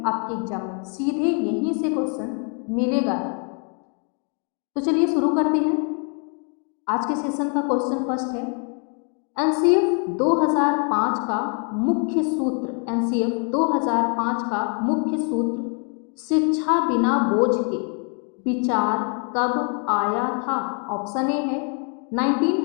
आपके एग्जाम में, सीधे यहीं से क्वेश्चन मिलेगा। तो चलिए शुरू करते हैं। आज के सेशन का क्वेश्चन फर्स्ट है, एनसीएफ 2005 का मुख्य सूत्र। एनसीएफ 2005 का मुख्य सूत्र शिक्षा बिना बोझ के विचार कब आया था? ऑप्शन ए है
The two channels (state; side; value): quieter; right; 39.6 dB